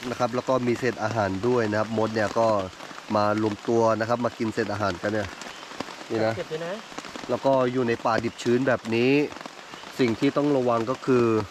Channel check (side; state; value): both; identical; correlation 1.00